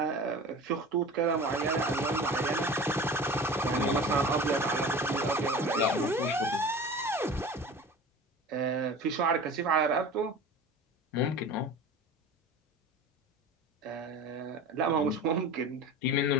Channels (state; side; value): normal; both; correlation 0.37